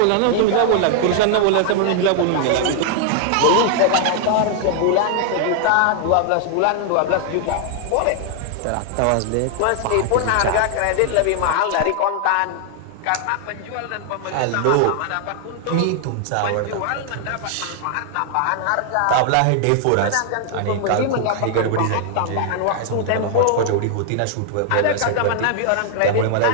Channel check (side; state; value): both; different; correlation 0.00